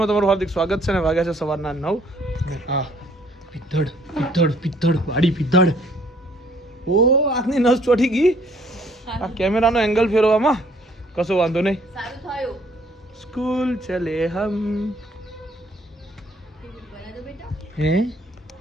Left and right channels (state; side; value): normal; both; correlation 0.62